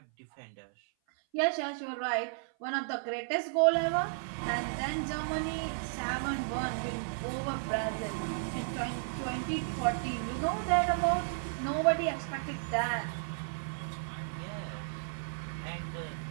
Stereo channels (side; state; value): left; silent; 55 dB below the other